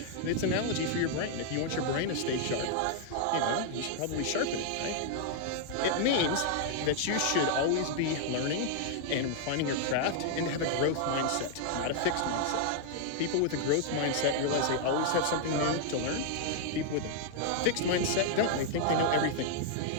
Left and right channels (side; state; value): both; different; correlation -0.01